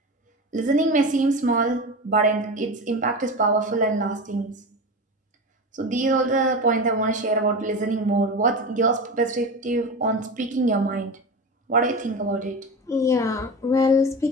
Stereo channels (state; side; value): normal; both; correlation 0.25